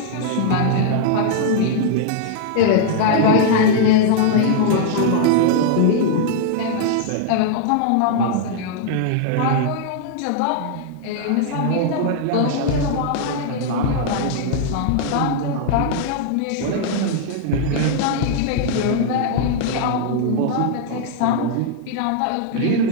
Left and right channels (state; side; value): different; both; correlation -0.01